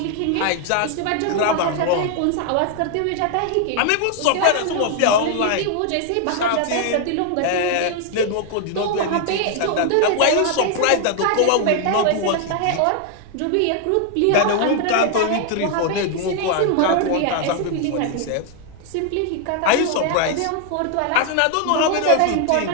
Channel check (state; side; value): different; both; correlation 0.00